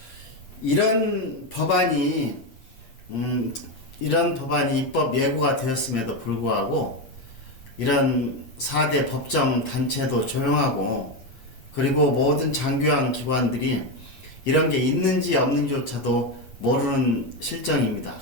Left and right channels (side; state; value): right; late; 8.7 ms